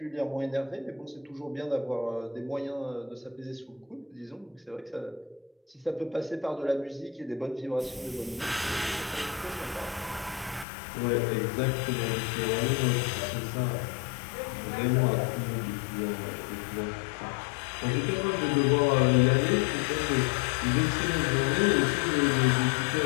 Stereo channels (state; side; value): drops out; right; at 10.7 s